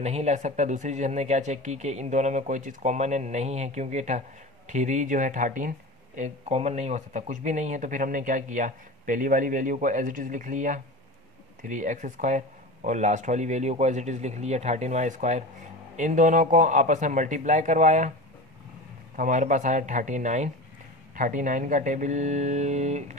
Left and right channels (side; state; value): both; normal; correlation 0.30